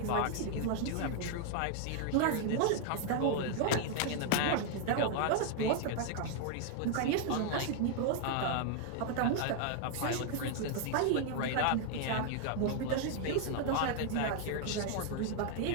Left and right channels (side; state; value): both; different; correlation 0.00